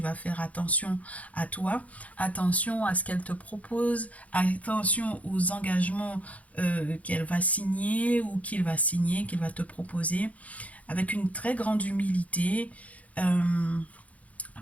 va faire attention à toi, attention à ce qu'elle te propose, attention aux engagements qu'elle va signer ou qu'il va signer, qu'il va te proposer, avec une très grande humilité.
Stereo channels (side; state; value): right; late; 0.069 ms